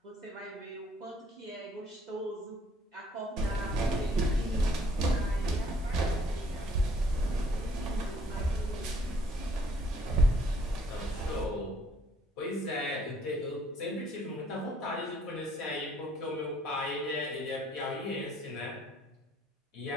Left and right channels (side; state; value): both; normal; correlation 0.64